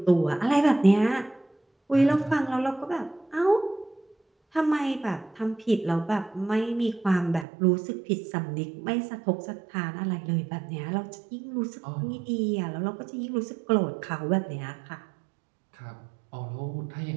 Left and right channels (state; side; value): drops out; left; at 7.5 s